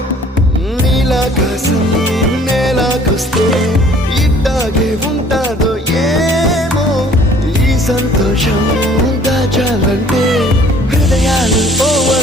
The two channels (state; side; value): normal; both; correlation 0.55